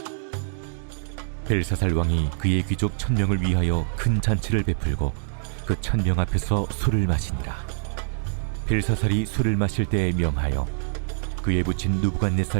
벨사살 왕이 그의 귀족 1000명을 위하여 큰 잔치를 베풀고 그 1000명 앞에서 술을 마시니라. 벨사살이 술을 마실 때에 명하여 그의 부친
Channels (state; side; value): silent; left; digital silence